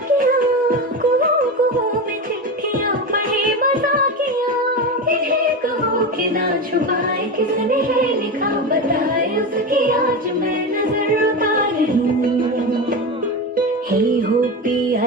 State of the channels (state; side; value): normal; both; correlation 0.21